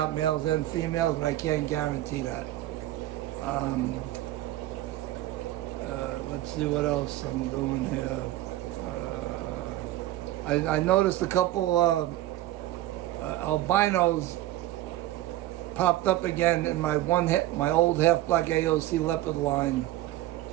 males and females, but I can't guarantee that. Let's see what else I'm doing here. I noticed a couple albinos popped up again in my old half-black AOC leopard line.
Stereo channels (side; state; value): left; quieter; 15.2 dB